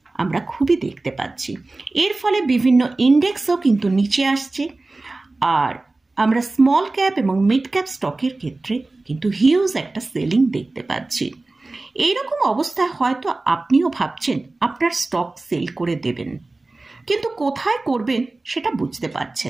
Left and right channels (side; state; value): left; quieter; 3.2 dB